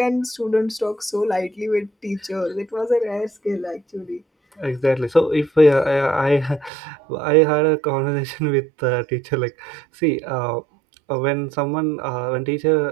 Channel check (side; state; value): left; drops out; at 6.7 s